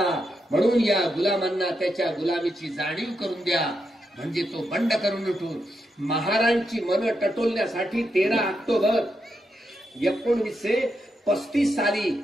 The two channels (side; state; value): both; normal; correlation 0.84